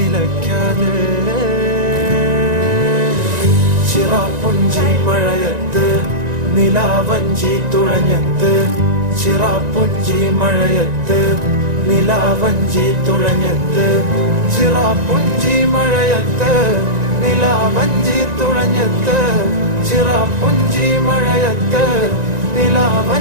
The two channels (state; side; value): late; left; 1.9 ms